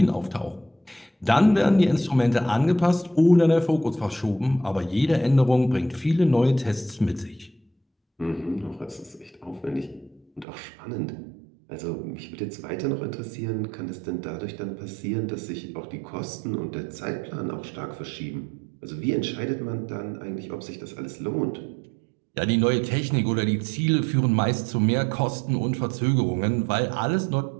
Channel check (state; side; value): drops out; left; at 10.5 s